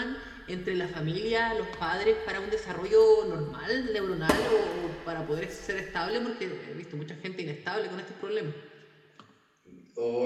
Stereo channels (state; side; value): identical; both; correlation 1.00